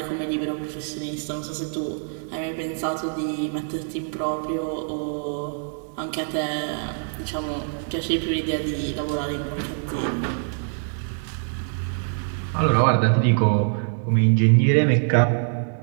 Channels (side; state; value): left; silent; digital silence